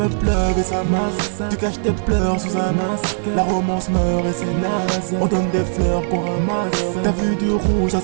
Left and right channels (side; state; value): left; silent; 66 dB below the other